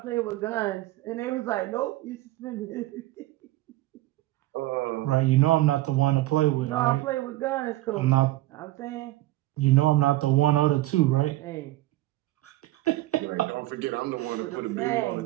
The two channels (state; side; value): quieter; left; 17.1 dB